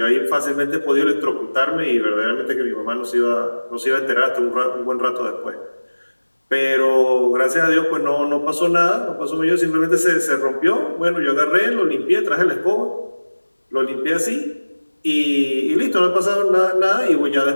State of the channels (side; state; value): both; inverted; correlation -1.00